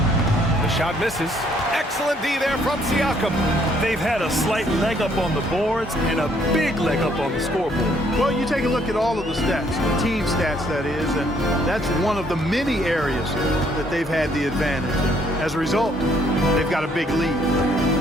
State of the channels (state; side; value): normal; both; correlation 0.66